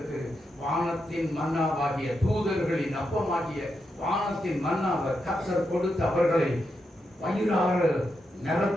வானத்தின் மன்னாவாகிய தூதர்களின் அப்பமாகிய வானத்தின் மன்னாவை கர்த்தர் கொடுத்து அவர்களை வயிறாறு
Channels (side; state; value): both; normal; correlation 0.85